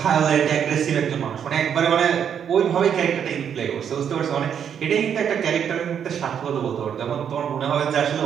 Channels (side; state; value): left; quieter; 8.3 dB